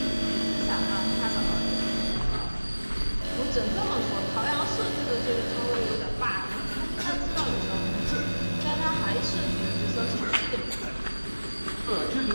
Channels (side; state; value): both; inverted; correlation -1.00